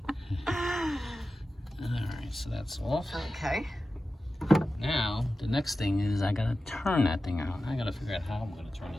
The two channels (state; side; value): normal; both; correlation 0.93